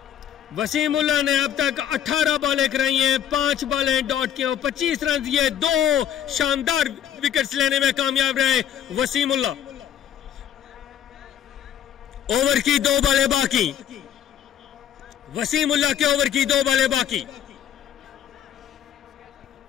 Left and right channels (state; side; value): quieter; right; 9.7 dB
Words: वसीमुल्लाह ने अब तक 18 बॉलें कराई हैं, 5 बॉलें डॉट की और 25 रन दिए। 2 शानदार विकेट्स लेने में कामयाब रहे वसीमुल्लाह। ओवर की 2 बॉलें बाकी, वसीमुल्लाह के ओवर की 2 बॉलें बाकी।